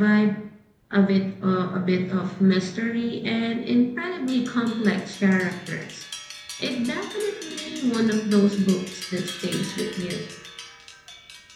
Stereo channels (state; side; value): identical; both; correlation 1.00